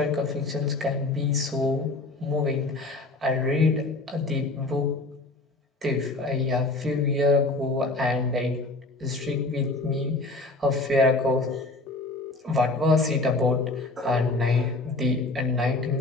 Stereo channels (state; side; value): quieter; right; 3.1 dB